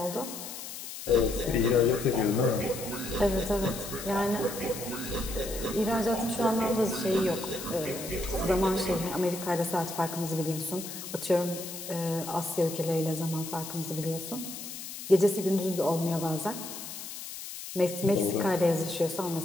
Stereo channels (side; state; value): left; noise; hiss, 10 dB below the sound